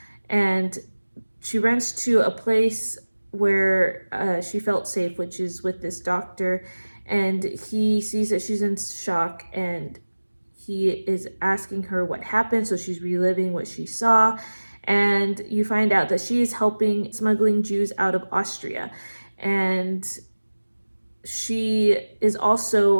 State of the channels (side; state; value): both; inverted; correlation -1.00